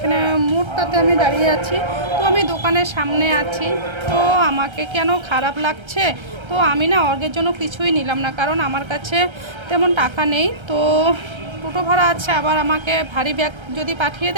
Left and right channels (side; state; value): left; late; 1.3 ms